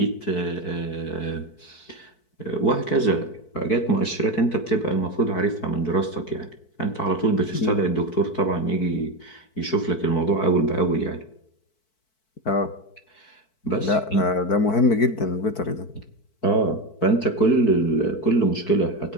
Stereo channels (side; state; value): right; late; 4.6 ms